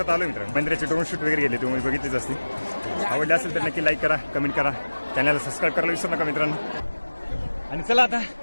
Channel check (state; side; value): inverted; both; correlation -1.00